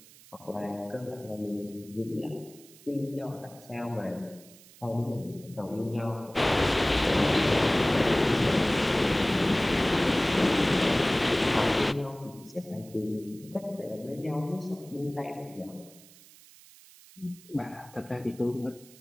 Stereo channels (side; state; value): right; noise; hiss, 23 dB below the sound